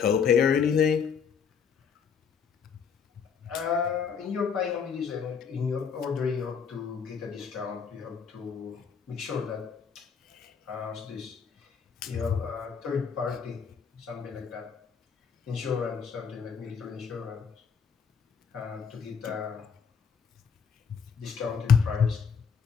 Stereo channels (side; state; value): right; quieter; 6.5 dB